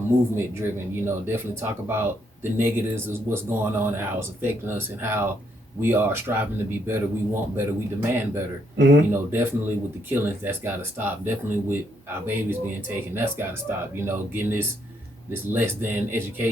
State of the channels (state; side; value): normal; both; correlation 0.74